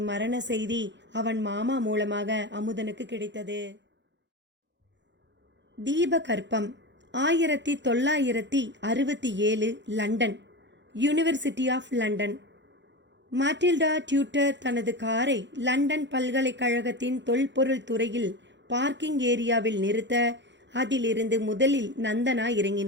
மரண செய்தி அவன் மாமா மூலமாக அமுதனுக்கு கிடைத்தது. தீபகற்பம் 1967 London, university of London. Matilda tutor தனது காரை லண்டன் பல்கலைக்கழகத்தின் தொல்பொருள் துறையில் பார்க்கிங் ஏரியாவில் நிறுத்த அதிலிருந்து முதலில் நந்தனா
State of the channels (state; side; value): late; left; 0.52 ms